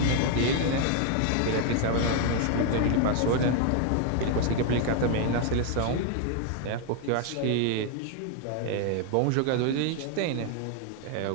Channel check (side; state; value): both; different; correlation 0.00